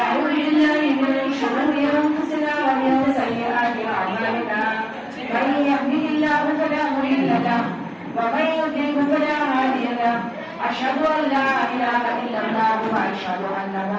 بالله من شرور أنفسنا ومن سيئات أعمالنا من يهده الله فلا مضل له ومن يضلل فلا هادي له أشهد أن لا إله إلا الله وأشهد أن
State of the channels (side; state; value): both; identical; correlation 1.00